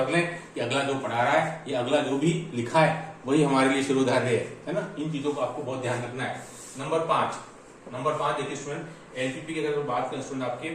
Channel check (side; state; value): both; identical; correlation 1.00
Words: लें कि अगला जो पढ़ा रहा है या अगला जो भी लिखा है वही हमारे लिए शिरोधार्य है ना। इन चीजों को आपको बहुत ध्यान रखना है। नंबर 5 देखिए स्टूडेंट, एलपीपी की अगर बात करें स्टूडेंट आपके,